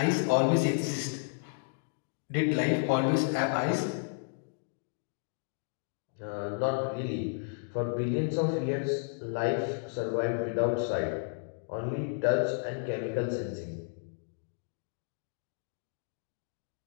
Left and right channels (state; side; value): silent; right; digital silence